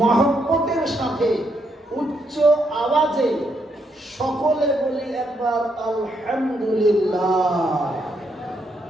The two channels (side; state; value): both; normal; correlation 0.77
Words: সাথে উচ্চ আওয়াজে সকলে বলি একবার আলহামদুলিল্লাহ।